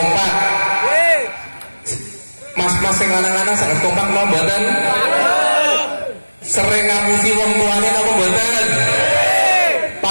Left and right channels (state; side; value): inverted; both; correlation -1.00